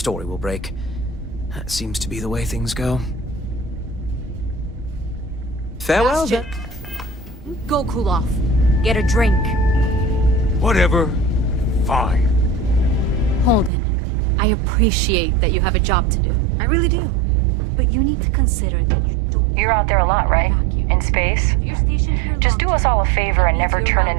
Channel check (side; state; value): left; drops out; at 13.7 s